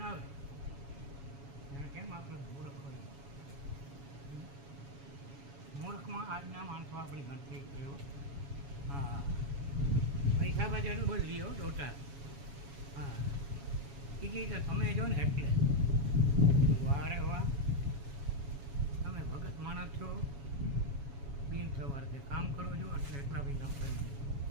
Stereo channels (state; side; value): late; left; 7.2 ms